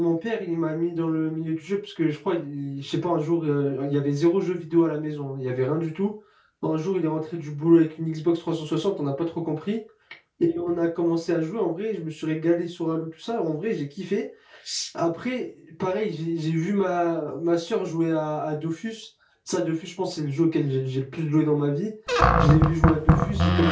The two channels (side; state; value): both; identical; correlation 1.00